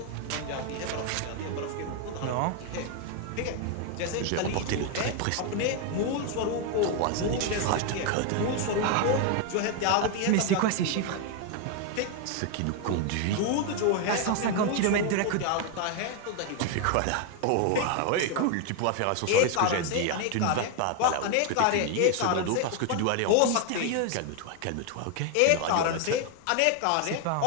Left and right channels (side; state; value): both; different; correlation 0.01